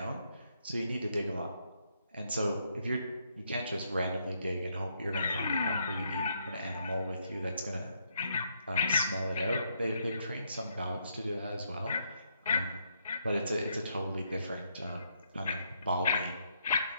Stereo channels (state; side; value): inverted; both; correlation -0.75